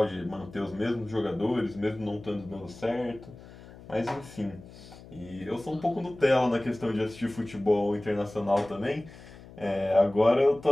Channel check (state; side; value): noise; left; hum, 19 dB below the sound